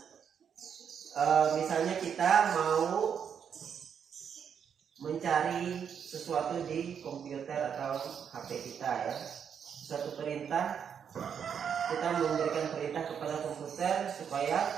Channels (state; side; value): quieter; left; 7.7 dB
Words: Misalnya kita mau mencari sesuatu di komputer atau HP kita ya. Suatu perintah, kita memberikan perintah kepada komputer supaya